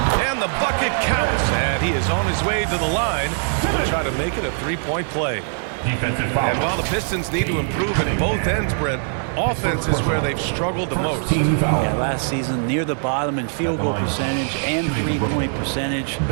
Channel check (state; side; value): silent; left; digital silence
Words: And the bucket counts. And he is on his way to the line. He'll try to make it a three-point play. Defensive foul. And while the Pistons need to improve at both ends, Brent, offense is where they've struggled the most. Yeah, last season near the bottom in field goal percentage and three-point percentage.